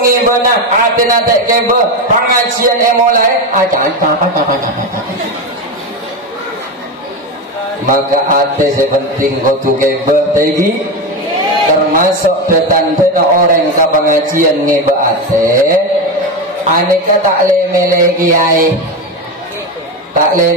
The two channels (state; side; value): normal; both; correlation 0.16